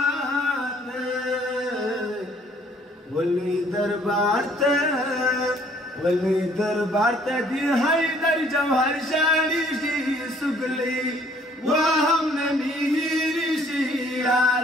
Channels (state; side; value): normal; both; correlation 0.60